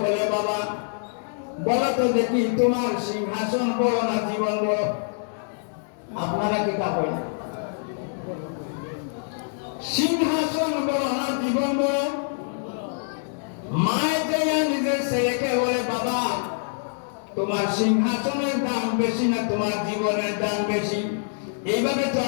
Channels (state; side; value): silent; right; digital silence